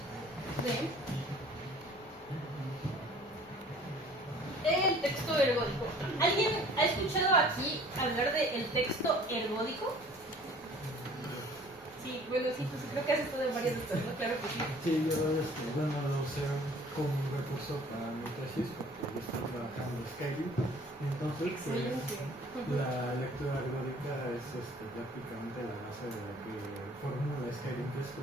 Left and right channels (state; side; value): normal; both; correlation 0.51